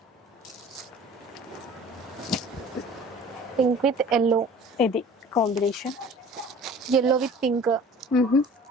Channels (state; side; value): normal; both; correlation 0.46